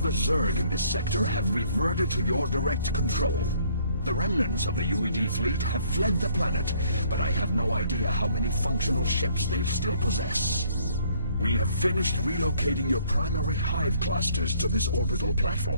the Zerg in this sector have reverted to your direct control. The remnants of the UED fleet have fled the planet, but I have no idea how many functional ships they still possess. We have finished relocating your primary hive clusters to this orbital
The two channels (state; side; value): inverted; both; correlation -0.63